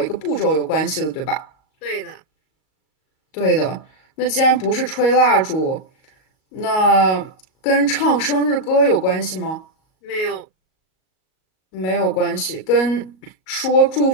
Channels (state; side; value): late; right; 38 ms